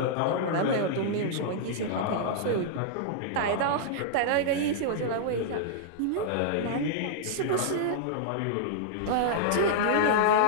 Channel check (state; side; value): different; both; correlation -0.01